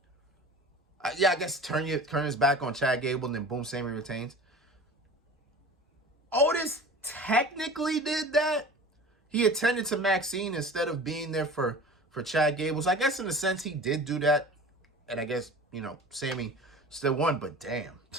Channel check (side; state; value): both; normal; correlation 0.38